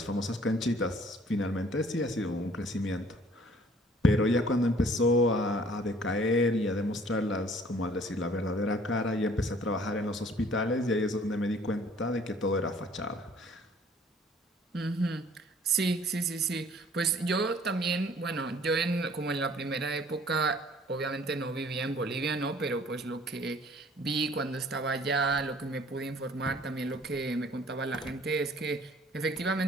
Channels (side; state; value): both; normal; correlation 0.55